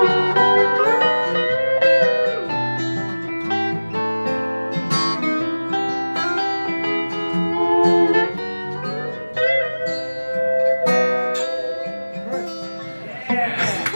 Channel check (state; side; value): inverted; both; correlation -1.00